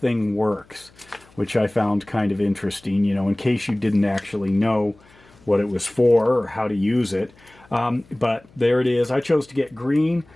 works, which I found kind of interesting, in case you didn't actually know what it was for or how to use it. But there it is. I chose to get green.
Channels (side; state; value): left; noise; hum, 28 dB below the sound